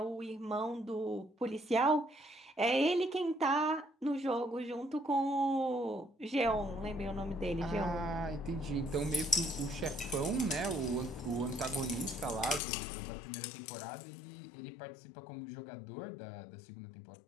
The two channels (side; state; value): right; drops out; at 12.6 s